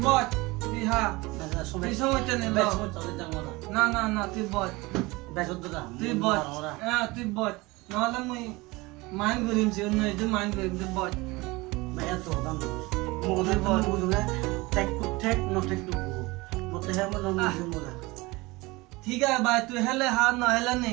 বল তুই হ্যাঁ da so be তুই সময় নেই be so to da mo না না না তুই বল be so da তুই বল হ্যাঁ তুই বল নাহলে মুই মাইন্ড করিমছি অন্য একটু মাইন্ড করিম তুই বল be ya to da mo da mo mo da tek to tek no tek to mo te ha mo no mo da ঠিক আছে ভাই তুই হেলে হ্যাঁ না হেলে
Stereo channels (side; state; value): left; quieter; 22.6 dB